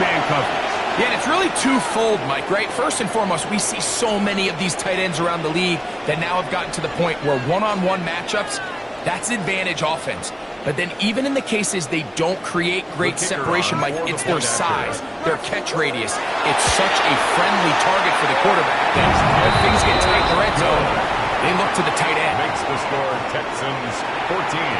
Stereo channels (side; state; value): both; identical; correlation 1.00